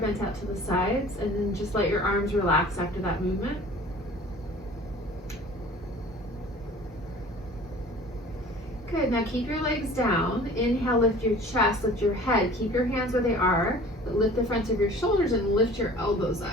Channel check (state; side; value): normal; both; correlation 0.46